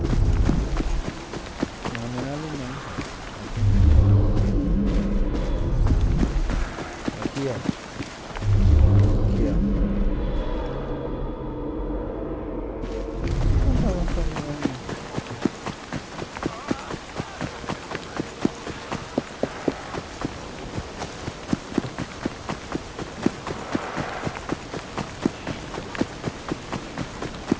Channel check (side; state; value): both; identical; correlation 1.00